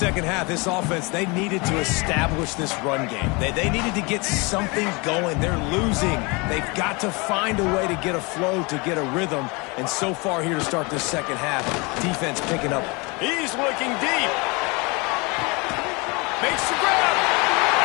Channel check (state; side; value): quieter; right; 27.9 dB